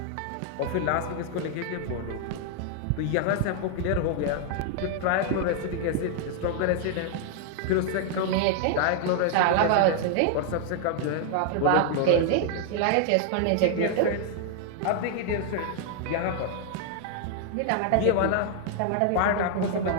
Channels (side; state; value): both; different; correlation 0.00